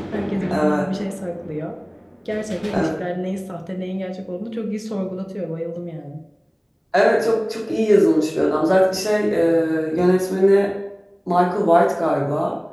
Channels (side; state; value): both; identical; correlation 1.00